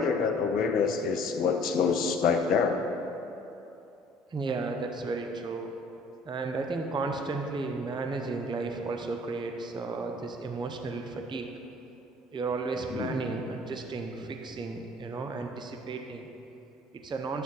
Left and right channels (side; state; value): both; normal; correlation 0.53